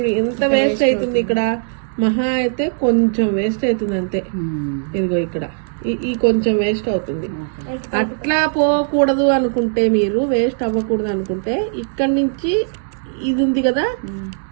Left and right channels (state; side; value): silent; left; digital silence